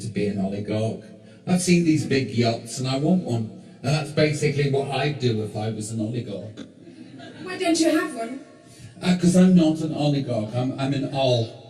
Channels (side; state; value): both; identical; correlation 1.00